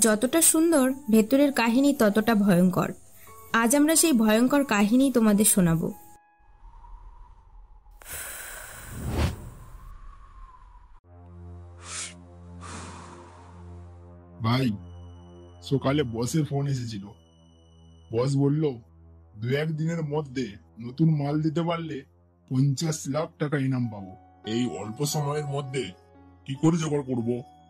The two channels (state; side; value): identical; both; correlation 1.00